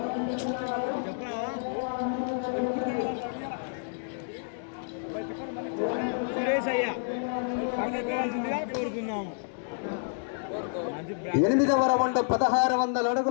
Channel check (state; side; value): silent; right; digital silence